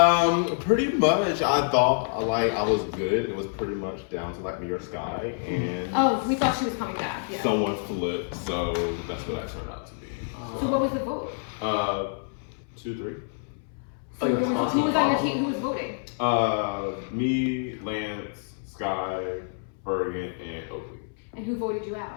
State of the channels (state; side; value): silent; right; 60 dB below the other